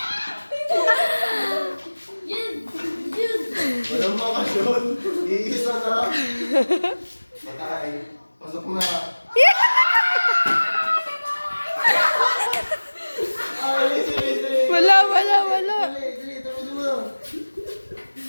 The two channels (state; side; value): inverted; both; correlation -1.00